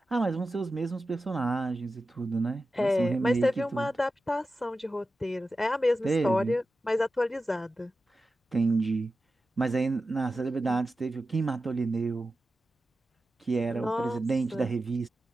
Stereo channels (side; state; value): both; normal; correlation 0.92